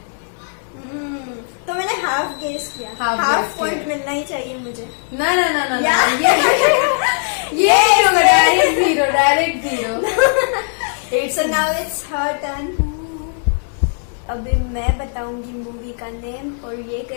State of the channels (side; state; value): right; silent; digital silence